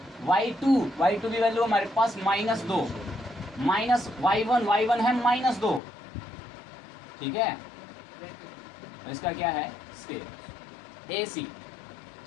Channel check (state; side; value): drops out; right; at 5.8 s